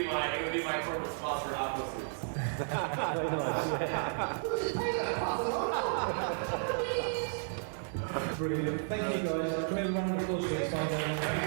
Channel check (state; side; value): silent; left; 56 dB below the other